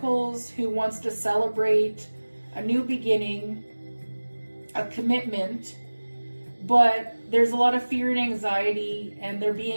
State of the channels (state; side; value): inverted; both; correlation -1.00